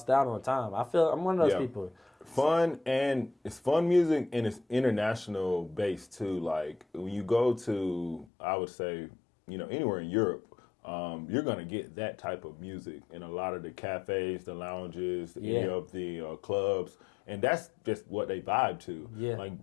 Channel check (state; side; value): drops out; right; at 8.2 s